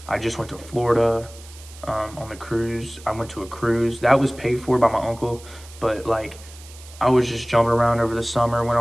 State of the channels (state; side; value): noise; right; hiss, 20 dB below the sound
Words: I just went to Florida on the cruise. I went to a cruise. That was paid for by my uncle, but like I was just jumping around over the summer, went